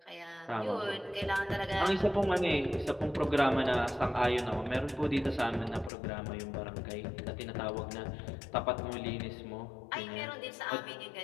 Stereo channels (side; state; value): right; drops out; at 5.9 s